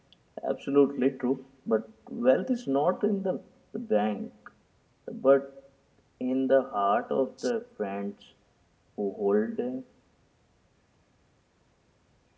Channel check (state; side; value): identical; both; correlation 1.00